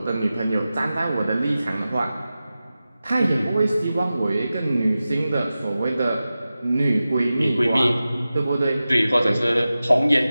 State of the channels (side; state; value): both; inverted; correlation -0.95